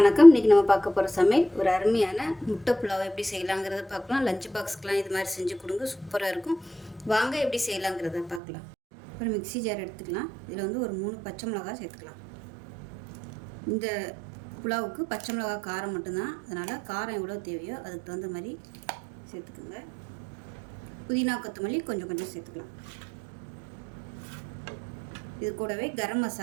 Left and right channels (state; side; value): drops out; left; at 8.4 s